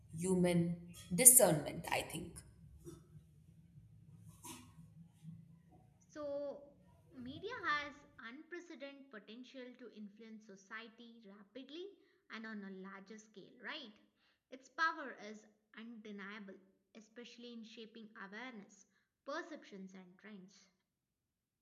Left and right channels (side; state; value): both; identical; correlation 1.00